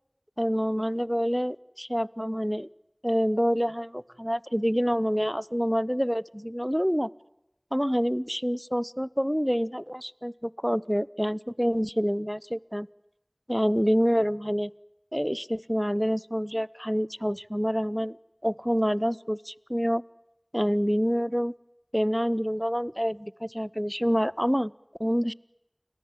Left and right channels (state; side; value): identical; both; correlation 1.00